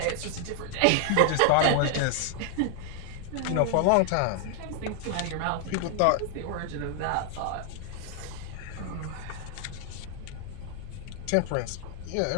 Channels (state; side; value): different; both; correlation 0.00